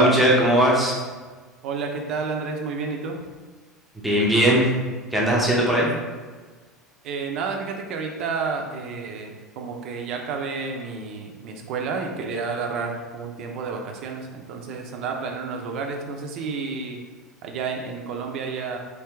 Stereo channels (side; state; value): both; normal; correlation 0.31